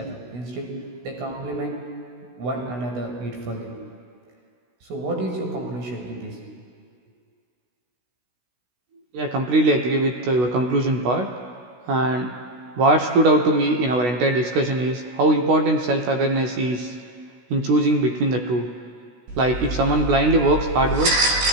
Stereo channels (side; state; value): left; late; 16 ms